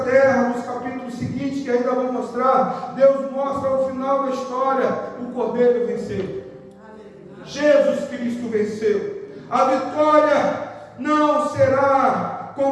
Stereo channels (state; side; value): identical; both; correlation 1.00